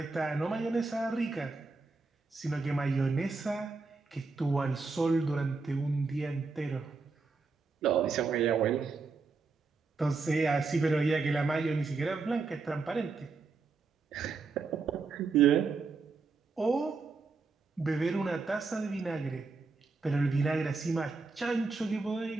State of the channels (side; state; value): left; quieter; 4.2 dB